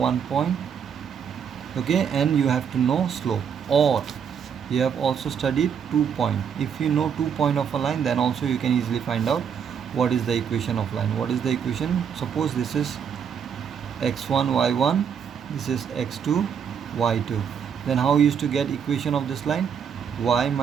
point, okay, and you have to know slope, or you have also studied 2 point. If you know 2 point of a line, then also you can easily find out what is the equation of line. What is the equation? Suppose this is x1 y1, this is x2 y2. Then how you used to get equation of this line? Y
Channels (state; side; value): quieter; left; 7.5 dB